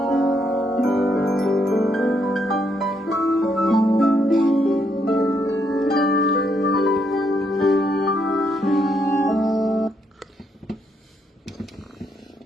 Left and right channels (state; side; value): normal; both; correlation 0.76